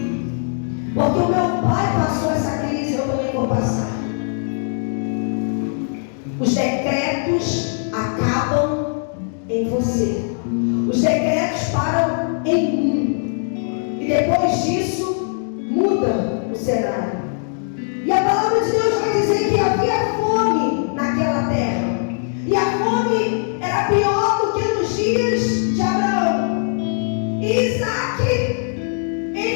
Porque o meu pai passou essa crise, eu também vou passar. Os decretos acabam em você. Os decretos param em mim. E depois disso, muda o cenário. E a palavra de Deus vai dizer que havia fome naquela terra. E a fome era pior do que nos dias de Abraão. E Isaac,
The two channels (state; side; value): silent; right; digital silence